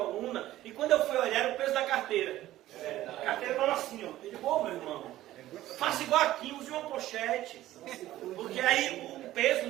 e quando eu fui olhar, era o peso da carteira. A carteira falou assim, ó. Ele, ô meu irmão, faça igual aqui, use uma pochete. Porque aí o peso,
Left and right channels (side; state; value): left; quieter; 14.8 dB